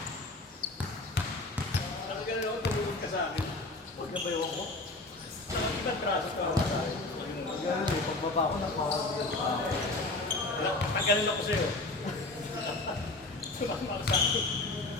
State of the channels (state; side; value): quieter; right; 3.0 dB